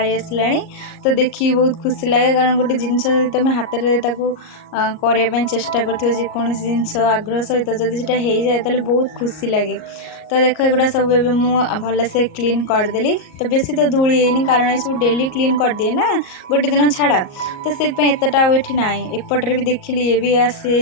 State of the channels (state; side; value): late; right; 38 ms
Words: आसला। तो देखिए बहुत खुशी लगे कारण गोटे जिनस तुम हाथ में करने चेष्टा करोसी जिनस आग्रह सहित जदि से हो जाए तो बहुत खुशी लगे। तो देख एगुड़ा सब भल से क्लीन करदेली। तो बेसी तो धूली है कारण ये सब डेली क्लीन कर दिए ना गोटे दिन छाड़ा। तो से एतटा ये ना एपटे भी देखिली ये भी